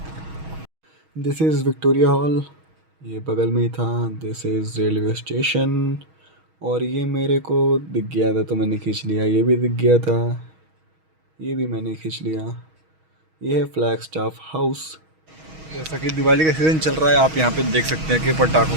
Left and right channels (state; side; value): late; left; 6.3 ms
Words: दिस इज़ विक्टोरिया हॉल, ये बगल में ही था। दिस इज़ रेलवे स्टेशन, और ये मेरे को दिख गया था तो मैंने खींच लिया। ये भी दिख गया था, ये भी मैंने खींच लिया। ये है फ्लैग स्टाफ हाउस। जैसा कि दिवाली का सीज़न चल रहा है, आप यहाँ पे देख सकते हैं कि